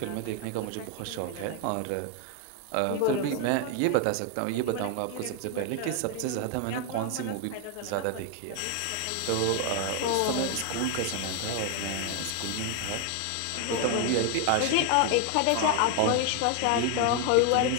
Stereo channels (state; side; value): different; both; correlation 0.00